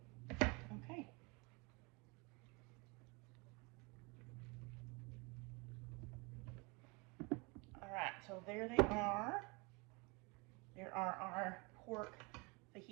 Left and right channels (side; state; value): left; quieter; 28.7 dB